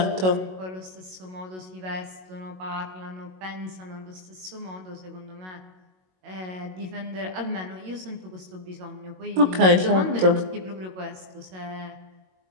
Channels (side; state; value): left; late; 22 ms